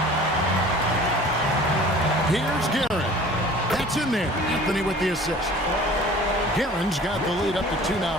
Here's Guerin. That's in there. Anthony with the assist. Guerin's got the lead up to 2 now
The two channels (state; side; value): normal; both; correlation 0.46